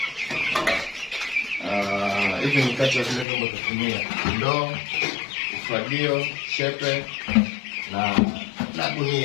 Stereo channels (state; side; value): drops out; right; at 3.2 s